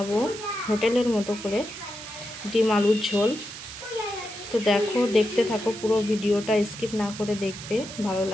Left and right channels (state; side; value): noise; right; hiss, 12 dB below the sound